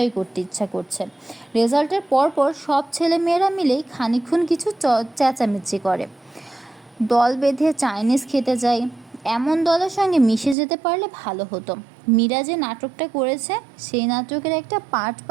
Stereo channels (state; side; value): drops out; left; at 10.6 s